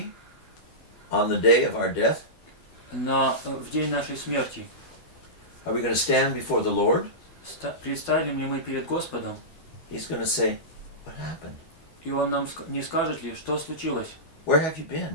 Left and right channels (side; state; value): right; late; 12 ms